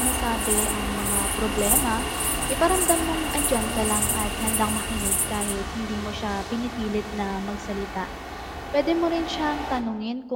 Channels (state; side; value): identical; both; correlation 1.00